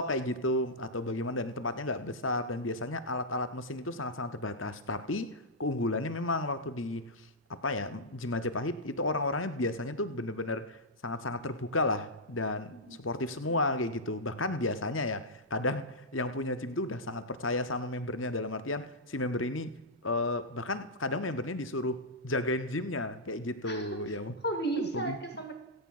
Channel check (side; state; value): both; normal; correlation -0.08